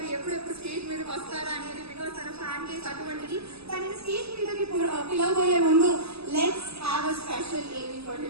ఎప్పుడెప్పుడు స్టేజ్ మీదకి వస్తారా అనేది, బికాస్ తన ఫ్యాన్ బేస్ అటువంటిది. తనని స్టేజ్ మీదకి పిలవబోయే ముందు let's have a special AV for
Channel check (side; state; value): left; late; 0.79 ms